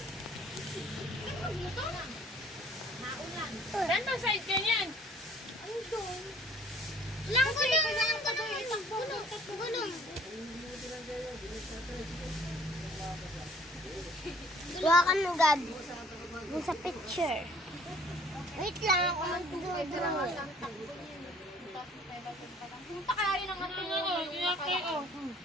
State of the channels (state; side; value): normal; both; correlation 0.55